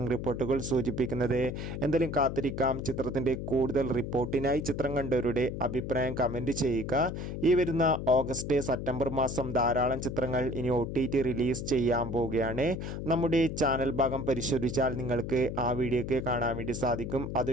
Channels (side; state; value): left; noise; hum, 5 dB below the sound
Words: റിപ്പോർട്ടുകൾ സൂചിപ്പിക്കുന്നത്. എന്തായാലും കാത്തിരിക്കാം. ചിത്രത്തിൻ്റെ കൂടുതൽ റിപ്പോർട്ടിനായി ചിത്രം കണ്ടവരുടെ അഭിപ്രായം കമൻറ്റ് ചെയ്യുക. ഈ വരുന്ന ഓഗസ്റ്റ് സെപ്റ്റംബർ മാസം ധാരാളം ചിത്രങ്ങൾ ഇനി OTT റിലീസ് ചെയ്യാൻ പോവുകയാണ്. നമ്മുടെ ചാനൽ ഭാഗം പരിശോധിച്ചാൽ നിങ്ങൾക്ക് ആ വീഡിയോ ഒക്കെ കാണാൻ വേണ്ടി സാധിക്കും.